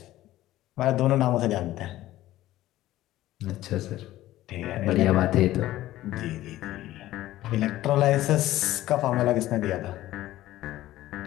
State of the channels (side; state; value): right; quieter; 15.2 dB